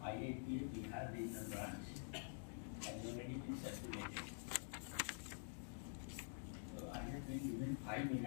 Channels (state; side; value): silent; right; digital silence